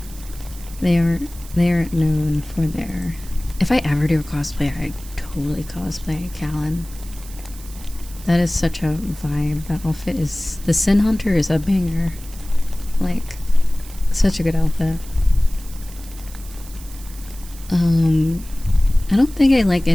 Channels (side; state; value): right; noise; hiss, 18 dB below the sound